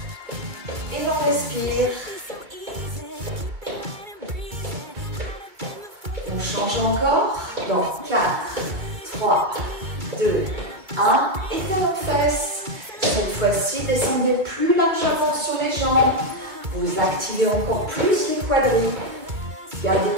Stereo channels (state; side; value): late; left; 2.3 ms